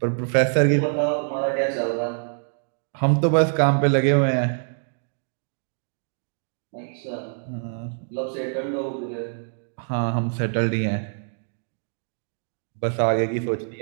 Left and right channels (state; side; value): silent; left; digital silence